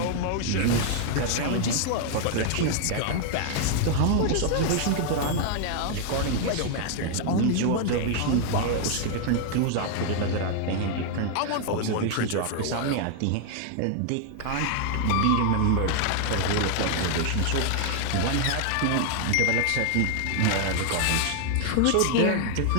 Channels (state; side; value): different; both; correlation 0.00